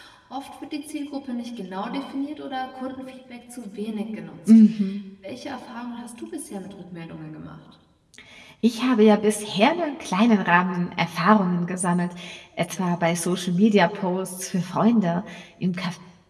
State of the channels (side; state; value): both; identical; correlation 1.00